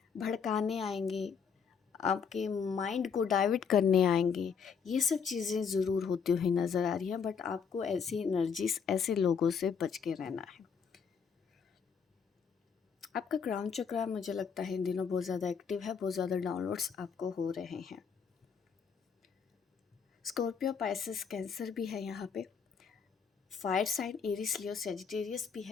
भड़काने आएंगे, आपके माइंड को डाइवर्ट करने आएंगे। ये सब चीज़ें ज़रूर होती हुई नज़र आ रही हैं, बट आपको ऐसी एनर्जीज, ऐसे लोगों से बच के रहना है। आपका क्राउन चक्रा मुझे लगता है इन दिनों बहुत ज़्यादा एक्टिव है, बहुत ज़्यादा डाउनलोड्स आपको हो रहे हैं। स्कॉर्पियो, पाइसेस, कैंसर भी है यहाँ पे। फायर साइन एरीज, लियो, सेजिटेरियस भी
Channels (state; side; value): quieter; right; 6.4 dB